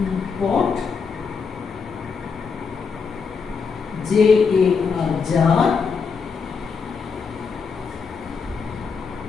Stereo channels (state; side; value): quieter; right; 5.5 dB